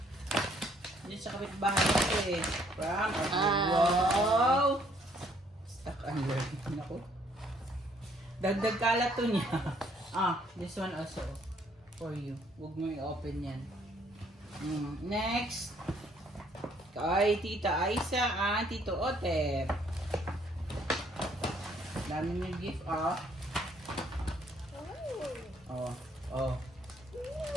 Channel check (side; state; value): both; normal; correlation 0.65